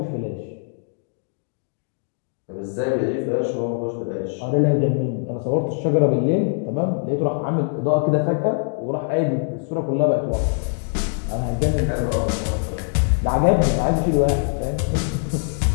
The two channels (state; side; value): silent; right; 64 dB below the other